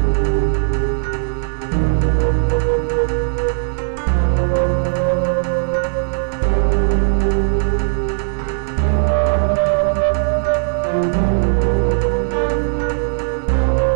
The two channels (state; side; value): silent; left; digital silence